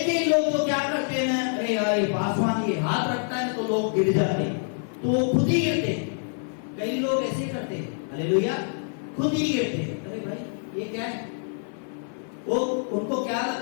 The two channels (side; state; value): right; silent; 58 dB below the other